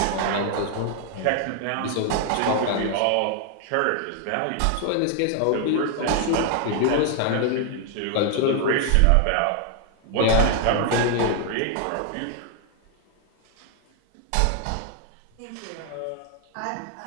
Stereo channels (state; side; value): different; both; correlation 0.00